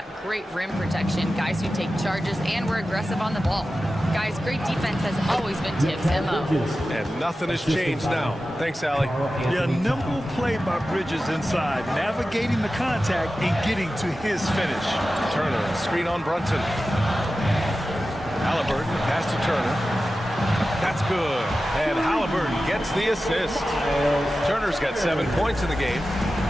great rim protection, guys who take charges, and we're aggressive on the ball. Guys, great defense has always been Tibbs' MO." And nothing has changed now. Thanks, Allie. Yeah, nimble play by Bridges inside, navigating the contact and getting to his finish. Turner, screen on Brunson. Halliburton, pass to Turner. That's good. And Halliburton gets the assist. Turner's got 7 points in the game.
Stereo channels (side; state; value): both; normal; correlation 0.94